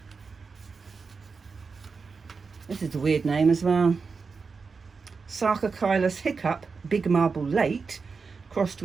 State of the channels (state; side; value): quieter; left; 4.9 dB